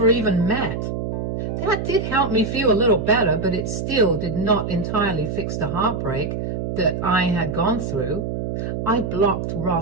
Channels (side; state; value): right; noise; hum, 3 dB below the sound